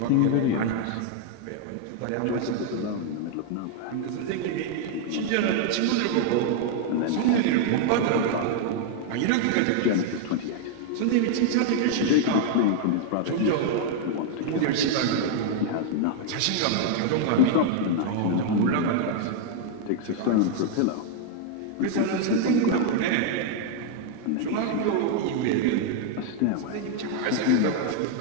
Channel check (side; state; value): both; different; correlation 0.00